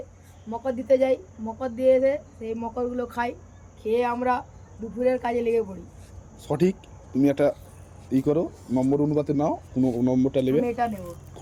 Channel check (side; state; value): both; identical; correlation 1.00